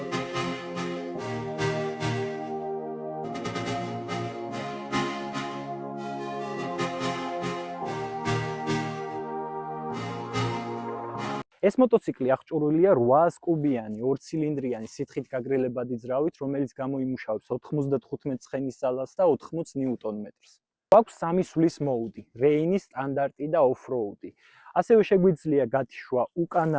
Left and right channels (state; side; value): identical; both; correlation 1.00